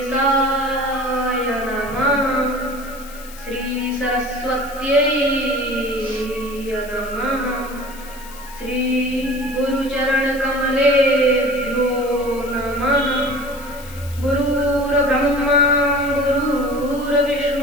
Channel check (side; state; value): left; noise; hiss, 19 dB below the sound